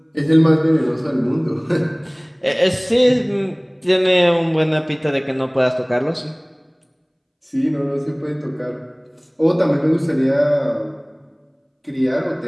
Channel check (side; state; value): both; identical; correlation 1.00